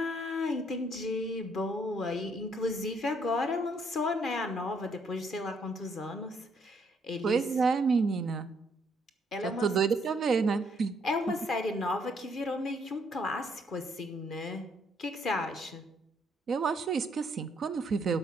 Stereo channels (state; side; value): normal; both; correlation 0.69